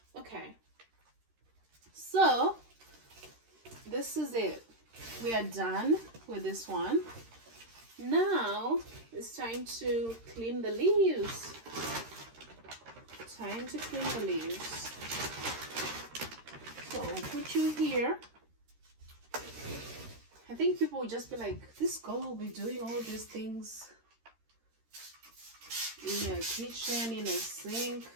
Okay. So, this is it. We are done with this one. Now, it's time to clean the leaves. Time to clean the leaves. So, I'll put you here. I think people will just be like, this girl will be doing all these things in a kitchen, in a sink.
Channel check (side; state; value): left; late; 13 ms